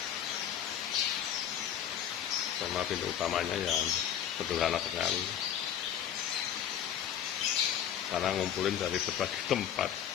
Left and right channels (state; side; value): quieter; right; 9.7 dB